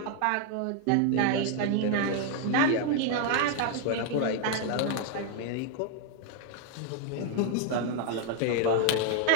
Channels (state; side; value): different; both; correlation 0.00